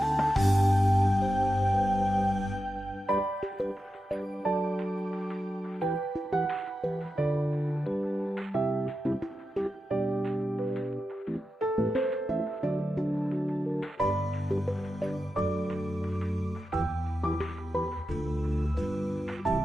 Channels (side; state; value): both; normal; correlation 0.90